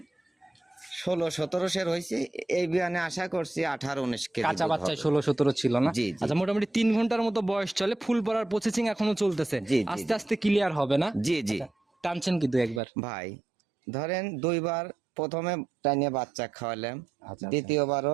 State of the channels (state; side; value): drops out; left; at 12.8 s